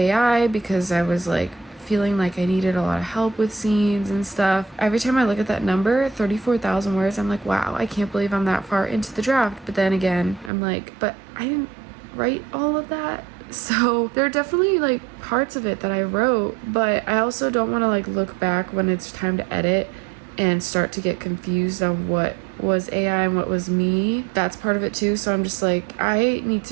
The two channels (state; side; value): drops out; left; at 10.5 s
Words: because I was like feeling like I needed a lot of help with scenes and stuff. Every time I look at that number, 34,000 words, I'm like, wow, I can't believe I'm that far into the draft. But then again, I'm like, but I didn't write all of that. So there are definitely like parts of it that I wrote, but I also don't want to like look back when it's time to edit and start to get confused on what was AI and what was me. That's part of it too. So I'm just like, I need